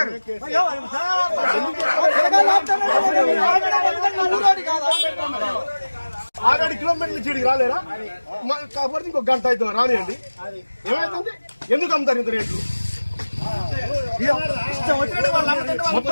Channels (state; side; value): inverted; both; correlation -1.00